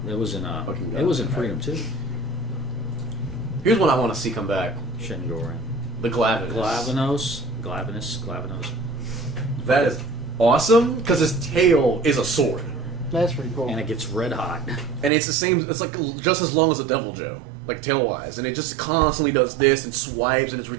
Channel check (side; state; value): left; drops out; at 15.1 s